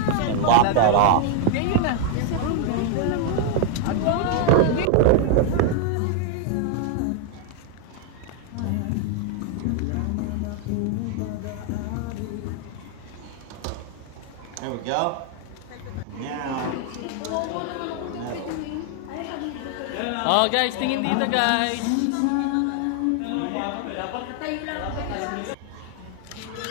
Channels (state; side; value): different; both; correlation 0.00